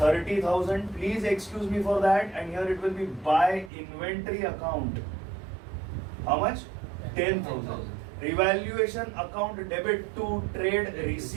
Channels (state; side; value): drops out; left; at 3.7 s